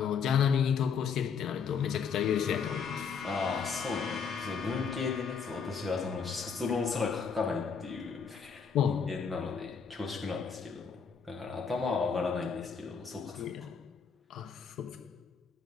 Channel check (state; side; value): quieter; right; 6.2 dB